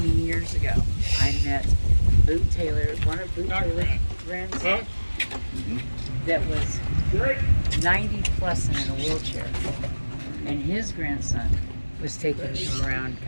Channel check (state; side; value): inverted; both; correlation -1.00